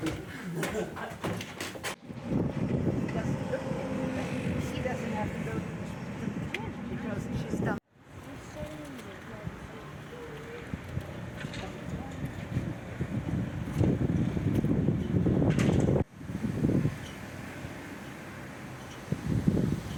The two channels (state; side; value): identical; both; correlation 1.00